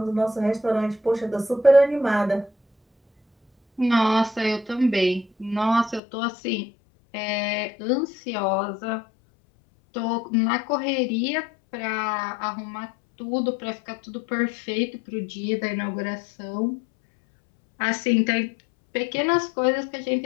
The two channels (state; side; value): drops out; right; at 6.0 s